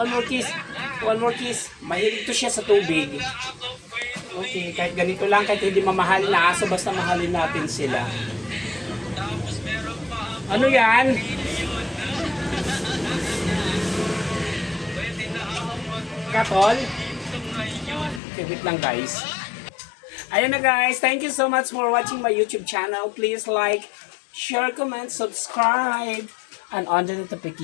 kiss. Mahilig to siya sa tubig. Okay, kahit ganito lang, kahit hindi mamahalin na aso, basta mahalin natin sila. Ano yan? Katol? Okay, wait lang guys. Ayan na guys, thank you so much for watching my YouTube channel. Please like, share, comment, subscribe, and on the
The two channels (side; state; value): right; drops out; at 18.2 s